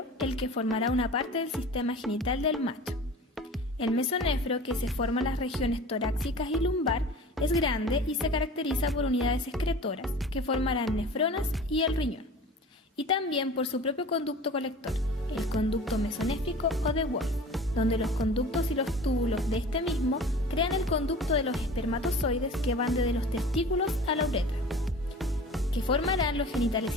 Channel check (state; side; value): normal; both; correlation 0.40